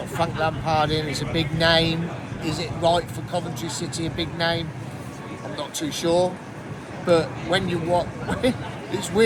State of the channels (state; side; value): identical; both; correlation 1.00